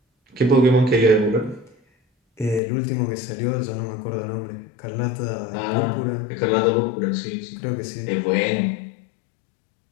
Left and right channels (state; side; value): drops out; right; at 2.6 s